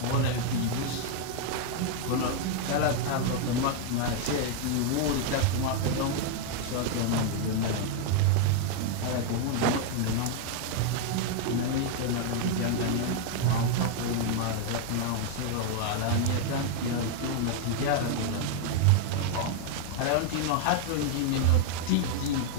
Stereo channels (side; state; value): both; different; correlation 0.00